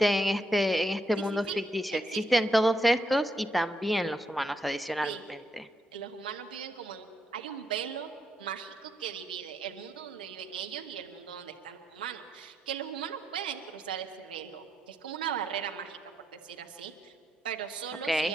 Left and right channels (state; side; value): normal; both; correlation 0.79